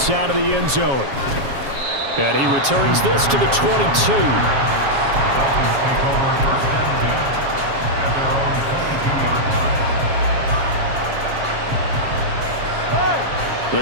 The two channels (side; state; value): left; late; 7.3 ms